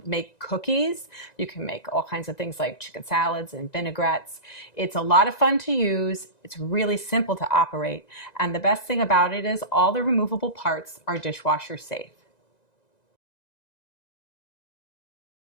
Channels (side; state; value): right; late; 1.9 ms